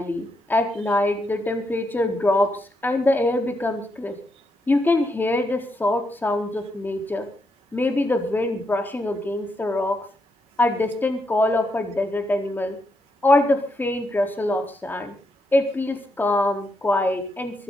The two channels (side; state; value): both; normal; correlation 0.80